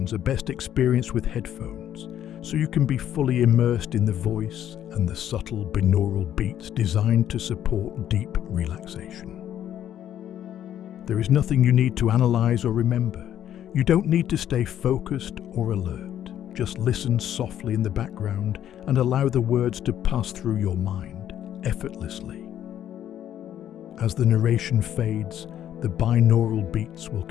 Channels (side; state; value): right; quieter; 10.8 dB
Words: are best experienced with headphones, so you can be fully immersed in the voice and the subtle binaural beats designed to support deep relaxation. There is nothing you need to analyze or remember. You don't need to stay focused or alert. Just listen softly in the background and allow the words to pass through your mind effortlessly. As the narration fades, the binaural beats will